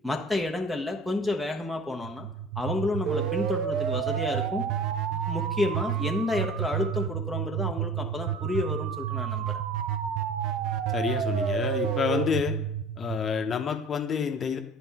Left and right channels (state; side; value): normal; both; correlation 0.43